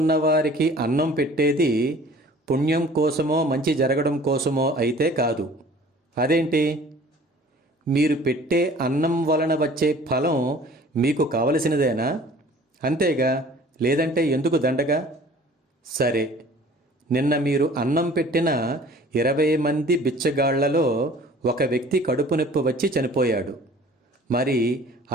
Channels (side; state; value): both; normal; correlation 0.49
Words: అన్నం పెట్టేది పుణ్యం కోసమో మంచి జరగడం కోసమో అయితే కాదు. అదేంటి? మీరు పెట్టే అన్నం వలన వచ్చే ఫలం మీకు కావలసినదేనా? అంతేగా, లేదంటే ఎందుకు దండగా? సరే, నిన్న మీరు అన్నం పెట్టిన 20 మంది బిచ్చగాళ్లలో ఒక వ్యక్తి కడుపు నొప్పి వచ్చి చనిపోయాడు. మరి